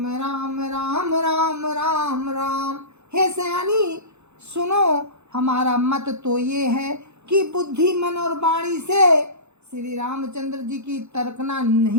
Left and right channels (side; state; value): left; late; 0.81 ms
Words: राम राम राम राम राम। हे सयानी सुनो, हमारा मत तो ये है कि बुद्धि मन और वाणी से श्री रामचंद्र जी की तर्कना